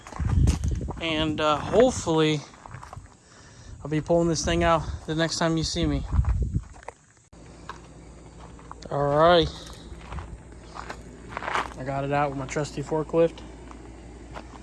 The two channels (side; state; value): both; identical; correlation 1.00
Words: and hopefully I'll be pulling this thing out the next time you see me. All right, I got it out with my trusty forklift.